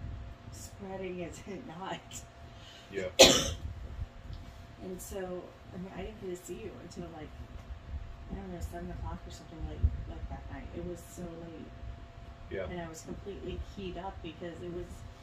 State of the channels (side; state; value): both; identical; correlation 1.00